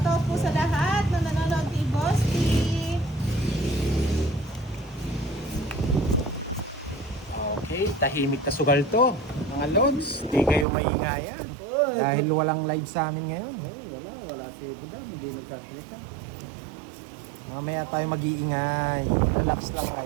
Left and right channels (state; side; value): drops out; left; at 10.7 s